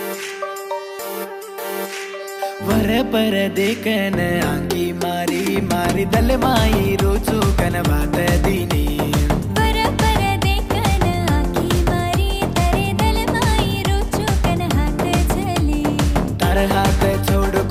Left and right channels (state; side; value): identical; both; correlation 1.00